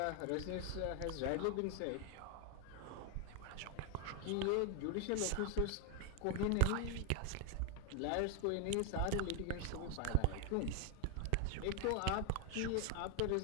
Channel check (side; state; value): both; different; correlation 0.01